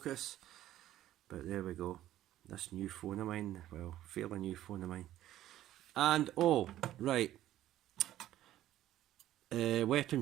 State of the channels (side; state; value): left; quieter; 13.4 dB